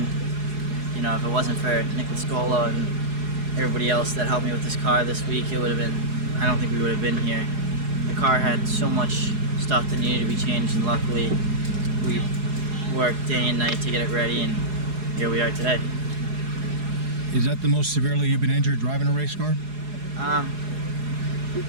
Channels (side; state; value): left; late; 4.8 ms